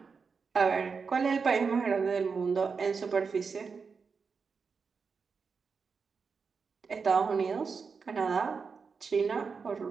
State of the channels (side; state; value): left; quieter; 5.3 dB